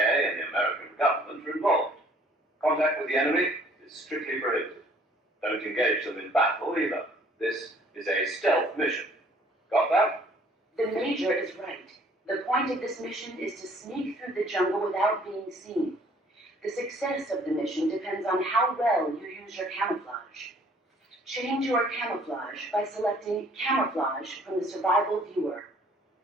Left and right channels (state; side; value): normal; both; correlation 0.58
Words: and the American government are involved. Contact with the enemy is strictly prohibited. Don't engage them in battle either. This is a stealth mission. Got that? The Major is right. The point of this mission is to sneak through the jungle without being seen. The success of the mission depends on how well you use your camouflage. Change your camouflage by selecting Camouflage from the Survival Viewer.